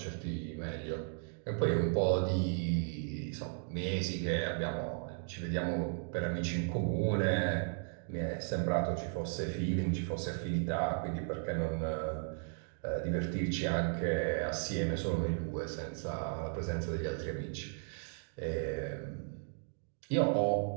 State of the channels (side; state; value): left; silent; 54 dB below the other